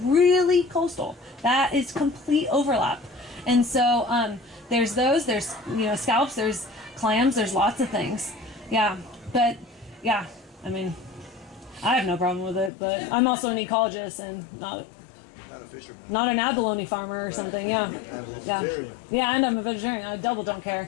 really coastal. That is complete overlap. And so there's those. There's scallops. There's clams. There's lots of things. Yeah, but yeah, I mean, I have no problem with it. But I'm also an ecologist and not Not a fisherman. not an abalone farmer or something. Yeah, yeah, and I'm a vegetarian. I double don't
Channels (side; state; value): right; drops out; at 12.7 s